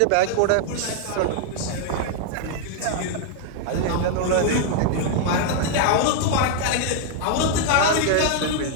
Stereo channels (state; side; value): different; both; correlation 0.00